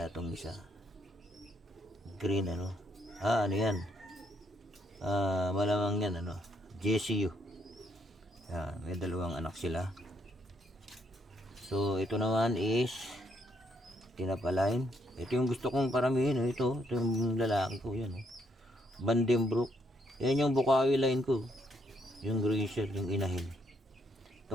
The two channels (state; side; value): normal; both; correlation 0.73